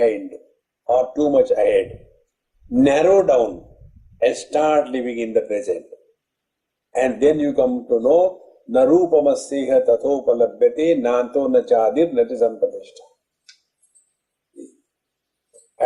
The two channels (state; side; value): identical; both; correlation 1.00